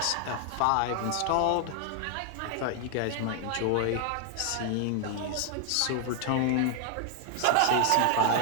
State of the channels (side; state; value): both; different; correlation 0.00